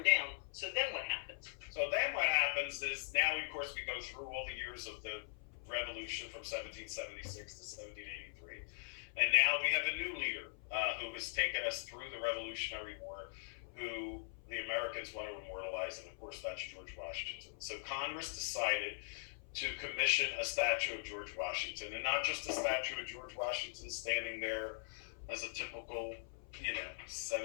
down. So then what happens? So then what happens is now, of course, we go through all the years of the revolution from 1776 to 1783. And now we have a new leader who has taken us through the Revolutionary War, who the Americans want to immortalize, and of course that's George Washington. So Congress decided to commission a statue of George Washington, and not just a statue of George Washington standing there as a typical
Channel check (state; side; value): silent; right; 50 dB below the other